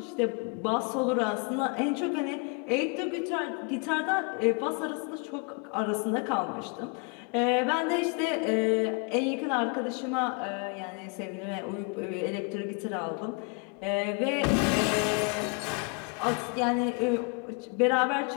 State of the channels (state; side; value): quieter; right; 33.8 dB